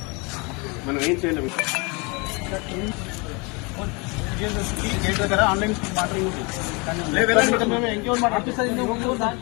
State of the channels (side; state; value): right; quieter; 29.3 dB